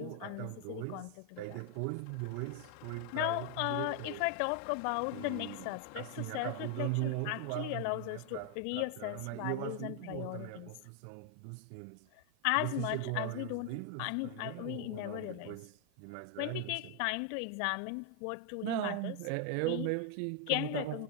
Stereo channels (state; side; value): different; both; correlation 0.00